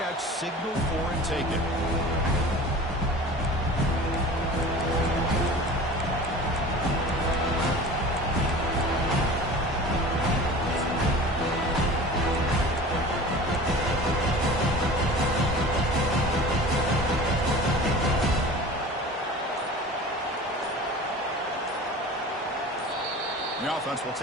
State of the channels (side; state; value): both; normal; correlation 0.39